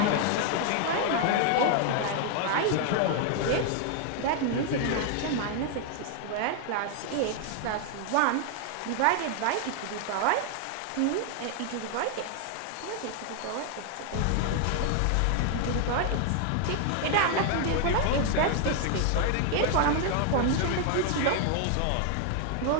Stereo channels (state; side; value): different; both; correlation 0.00